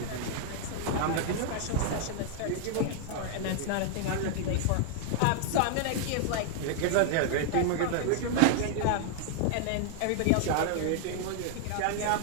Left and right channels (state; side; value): different; both; correlation 0.00